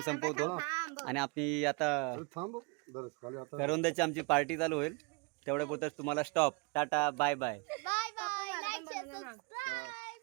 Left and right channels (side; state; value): left; quieter; 29.6 dB